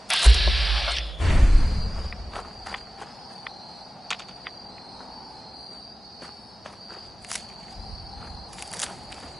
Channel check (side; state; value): both; normal; correlation 0.96